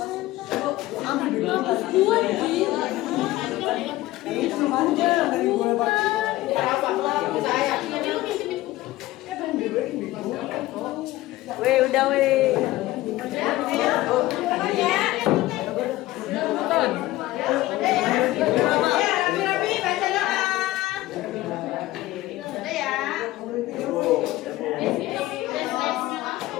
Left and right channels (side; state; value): right; quieter; 17.2 dB